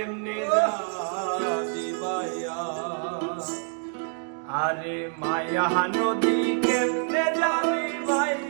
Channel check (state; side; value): silent; left; 60 dB below the other